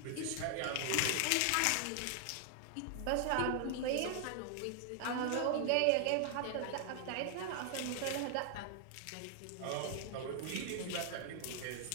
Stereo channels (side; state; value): both; different; correlation 0.00